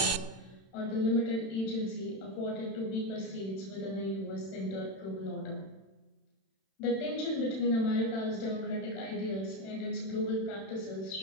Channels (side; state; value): right; late; 31 ms